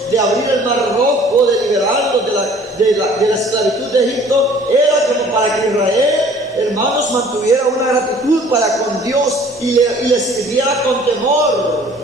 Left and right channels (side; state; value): both; normal; correlation 0.52